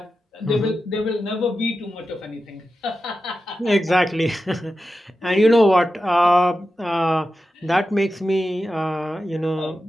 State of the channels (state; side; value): normal; both; correlation 0.91